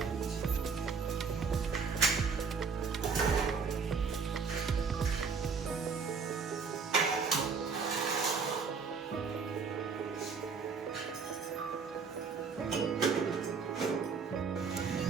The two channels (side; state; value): left; quieter; 5.3 dB